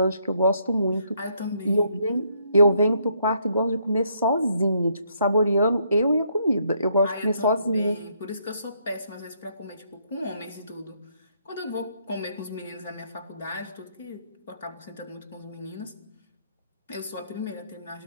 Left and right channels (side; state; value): both; inverted; correlation -0.71